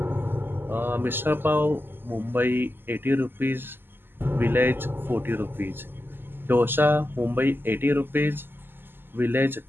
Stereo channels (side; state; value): left; late; 0.098 ms